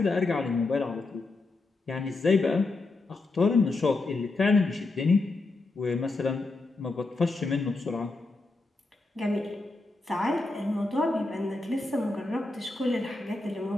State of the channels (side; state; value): right; quieter; 3.3 dB